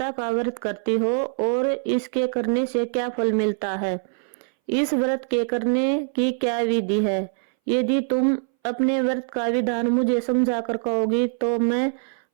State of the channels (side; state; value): left; silent; 61 dB below the other